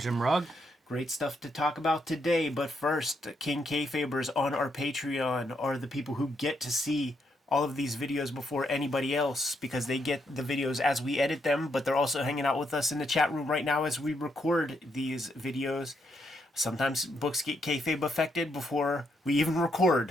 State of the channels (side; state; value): both; normal; correlation 0.78